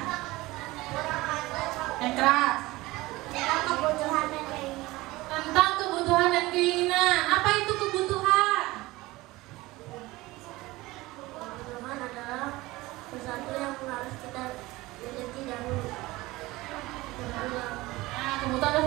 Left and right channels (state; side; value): quieter; left; 19.9 dB